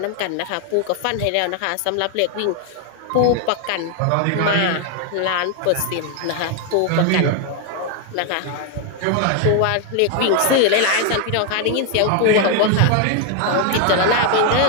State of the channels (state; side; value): different; both; correlation 0.01